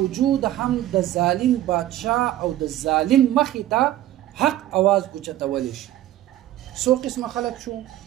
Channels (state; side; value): quieter; left; 13.8 dB